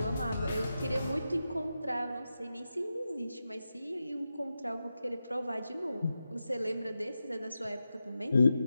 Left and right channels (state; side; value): inverted; both; correlation -0.90